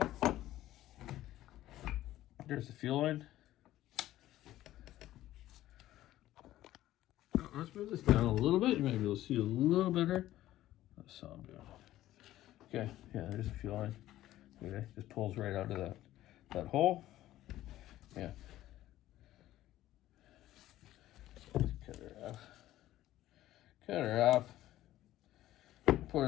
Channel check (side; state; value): right; quieter; 14.4 dB